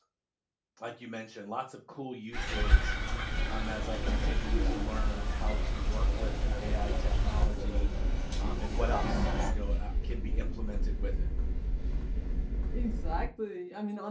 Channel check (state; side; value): identical; both; correlation 1.00